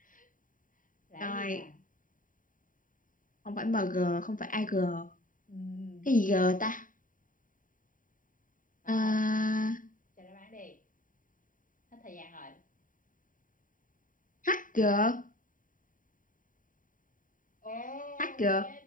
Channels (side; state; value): right; late; 0.39 ms